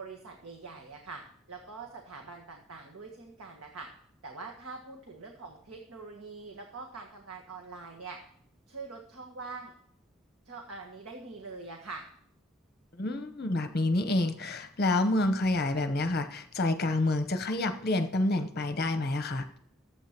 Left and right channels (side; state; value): both; normal; correlation 0.64